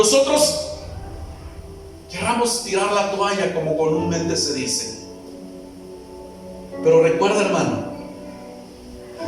querramos tirar la toalla, como comúnmente se dice. Pero recuerda, hermano,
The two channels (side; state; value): both; identical; correlation 1.00